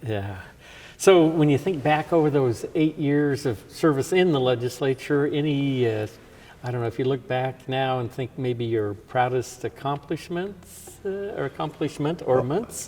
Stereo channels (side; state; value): both; identical; correlation 1.00